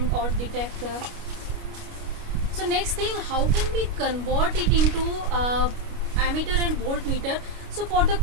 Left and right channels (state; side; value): late; left; 29 ms